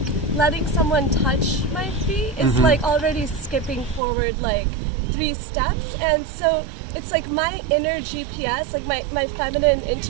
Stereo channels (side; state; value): left; drops out; at 4.0 s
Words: letting someone touch my feet is like already skipping forward like 3 steps. And so it's like my inner GPS, like my feminine